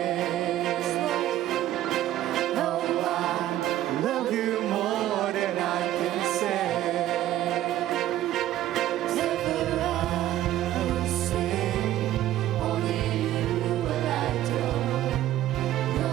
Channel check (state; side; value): quieter; left; 13.5 dB